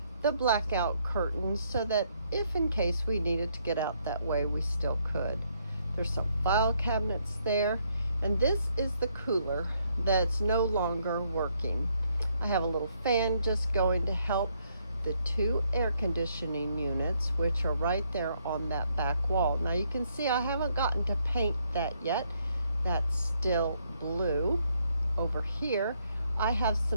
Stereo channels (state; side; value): inverted; both; correlation -0.72